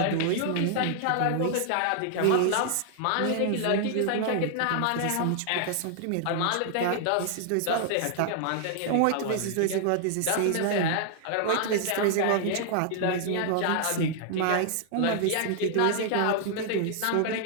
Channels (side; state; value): both; different; correlation 0.00